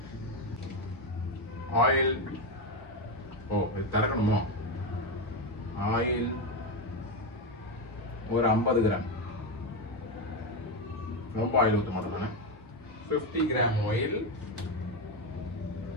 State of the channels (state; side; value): normal; both; correlation 0.11